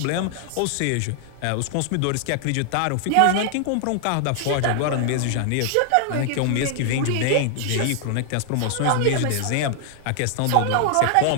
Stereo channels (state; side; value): different; both; correlation 0.00